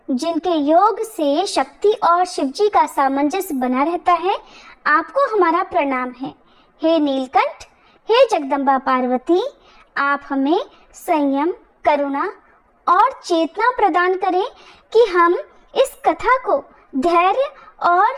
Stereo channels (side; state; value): both; identical; correlation 1.00